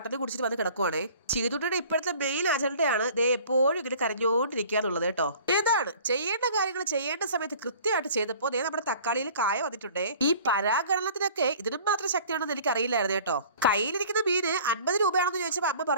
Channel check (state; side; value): inverted; both; correlation -0.48